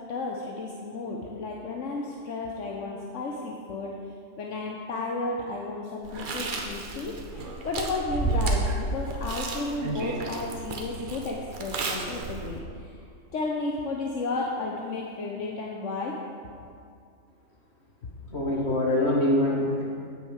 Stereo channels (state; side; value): late; right; 2.4 ms